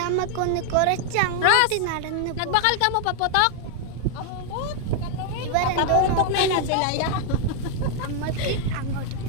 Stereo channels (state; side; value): different; both; correlation 0.00